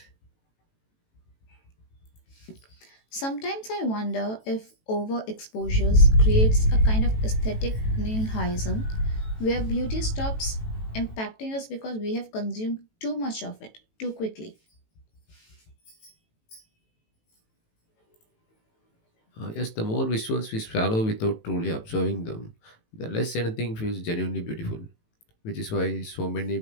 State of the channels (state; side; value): late; right; 18 ms